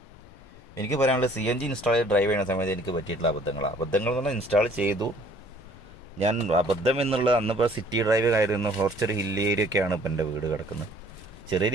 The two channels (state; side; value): normal; both; correlation 0.56